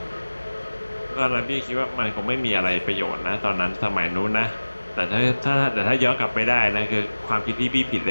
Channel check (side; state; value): both; inverted; correlation -1.00